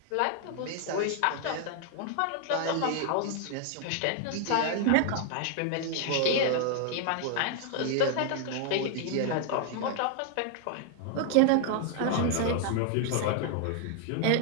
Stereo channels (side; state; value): both; different; correlation 0.00